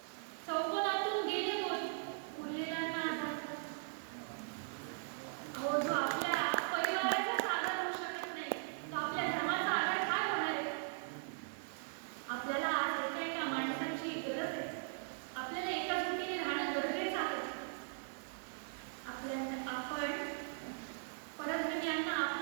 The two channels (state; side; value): silent; left; digital silence